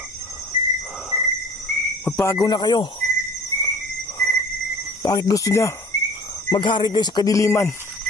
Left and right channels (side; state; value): both; normal; correlation 0.46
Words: Magbago na kayo. Bakit gusto niya maghari kayo sa kadiliman?